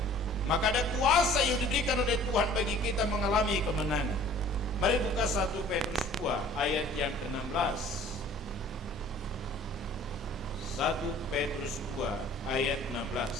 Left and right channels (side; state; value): both; normal; correlation 0.51